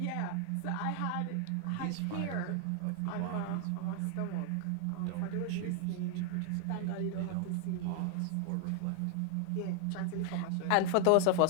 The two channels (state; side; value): different; both; correlation 0.00